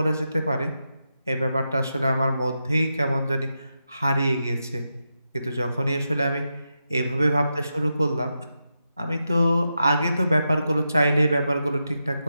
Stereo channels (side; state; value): both; inverted; correlation -0.87